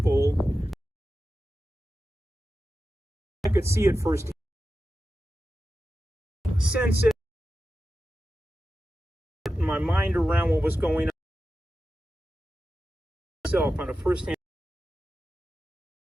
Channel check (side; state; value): both; normal; correlation 0.92